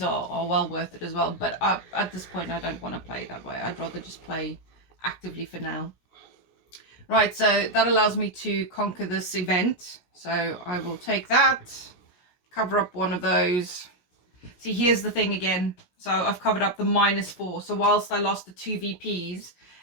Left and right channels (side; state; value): right; late; 16 ms